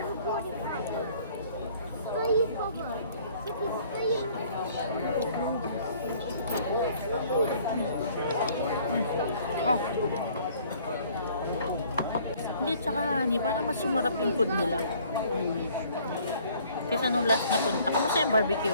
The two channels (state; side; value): inverted; both; correlation -0.57